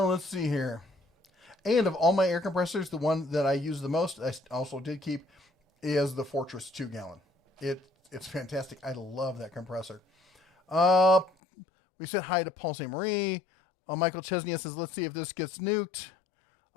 see here. And of all my air compressors, the one that I use the most, I also did keep, is the Fortress 2 gallon. It's fantastic. I love that compressor. We said hi to Paul St. Marie. Michael Chesney says, "Let's see if this gets nuked."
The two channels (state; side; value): drops out; right; at 11.3 s